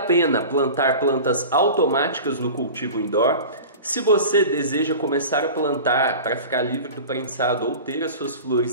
plantar plantas automáticas no cultivo indoor? Se você deseja começar a plantar para ficar livre do prensado ou ter as suas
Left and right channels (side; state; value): both; inverted; correlation -0.35